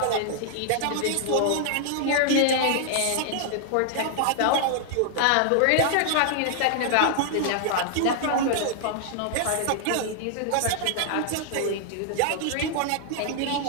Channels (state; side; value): different; both; correlation -0.01